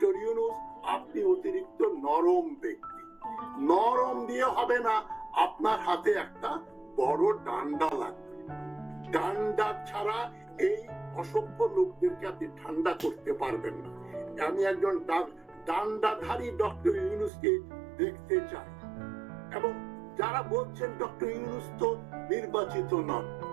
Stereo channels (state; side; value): drops out; left; at 17.3 s